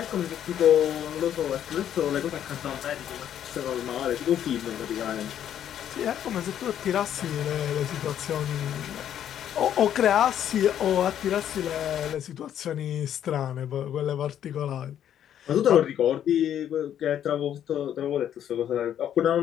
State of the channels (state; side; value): quieter; right; 10.2 dB